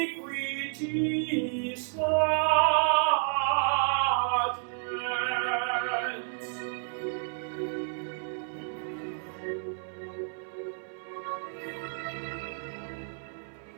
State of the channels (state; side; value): silent; left; 57 dB below the other